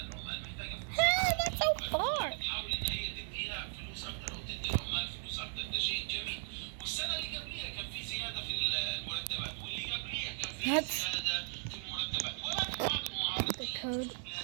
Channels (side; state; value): left; silent; 53 dB below the other